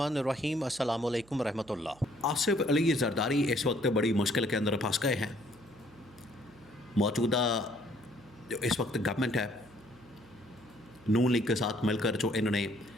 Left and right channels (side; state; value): right; noise; hum, 26 dB below the sound